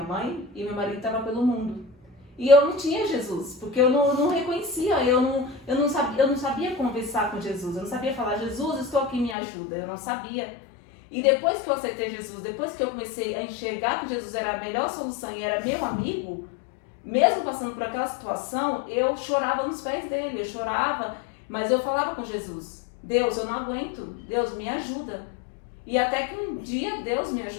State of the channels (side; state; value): right; drops out; at 9.3 s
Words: mãe e meu marido estava pelo mundo. E eu não tinha Jesus, porque eu não reconhecia, eu não sabia conversar com Jesus, eu não sabia falar, Jesus, estou aqui, me ajuda, eu não sabia. E depois que eu aceitei Jesus, depois que eu comecei a enxergar que Jesus era a melhor solução e era meu amigo, mesmo passando por aquela situação, eu chorava nos pés dele, eu chorava, mas eu falava com Jesus, Deus, eu não aguento, Deus, me ajuda. E até que um dia Deus me